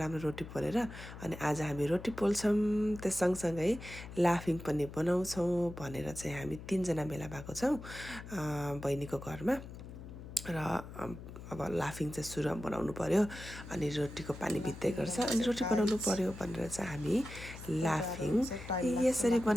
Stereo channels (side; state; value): left; noise; hum, 13 dB below the sound